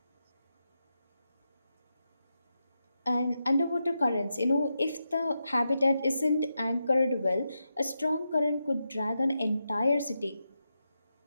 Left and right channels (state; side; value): inverted; both; correlation -0.87